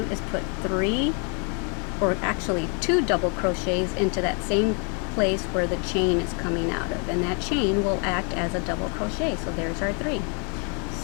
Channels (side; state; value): right; quieter; 36.6 dB